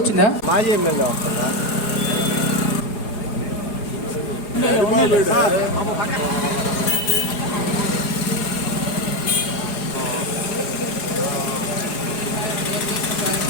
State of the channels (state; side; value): late; right; 4.8 ms